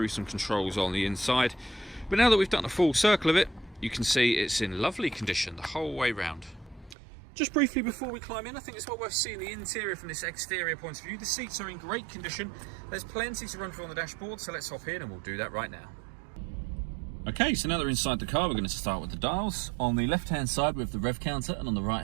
some controls on the inside. But now that we've done a full circle of it, you can see it's in lovely condition the whole way round. Just briefly before we climb in, I think it's well worth seeing the interior from this exterior point of view. The seats are in great condition. There's plenty to run through on the dashboard, so let's hop in and we'll do that right now. Okay, so now that we're inside the car, we're going to start with the dials. On the left-hand side, we have the rev counter, and on the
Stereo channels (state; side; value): drops out; left; at 7.0 s